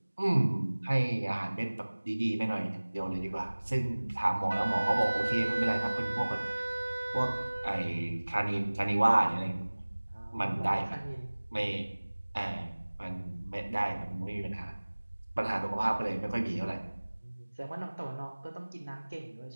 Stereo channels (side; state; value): both; inverted; correlation -1.00